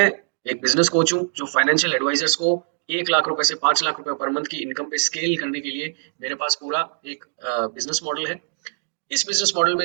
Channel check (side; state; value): left; silent; digital silence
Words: एक बिजनेस कोच हूँ जो फाइनेंशियल एडवाइजर्स को 1 लाख रुपए से 5 लाख रुपए पर मंथ की इनकम पे स्केल करने के लिए मेरे पास पूरा एक बिजनेस मॉडल है। इस बिजनेस मॉडल